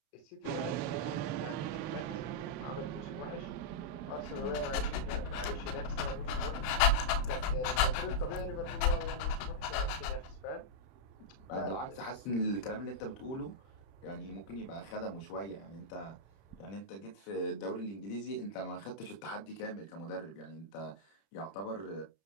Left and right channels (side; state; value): right; late; 31 ms